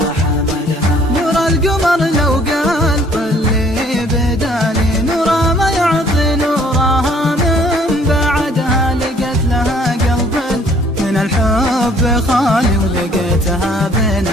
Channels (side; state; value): both; normal; correlation 0.59